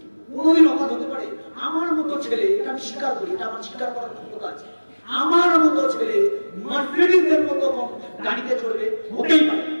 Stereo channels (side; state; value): both; inverted; correlation -1.00